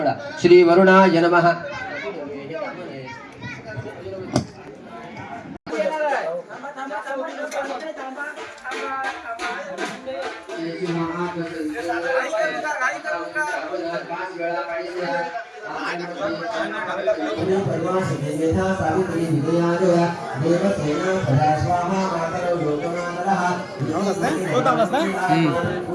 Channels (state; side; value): identical; both; correlation 1.00